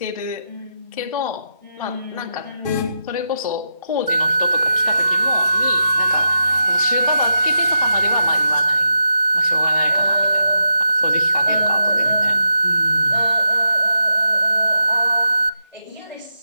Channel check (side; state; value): both; inverted; correlation -0.87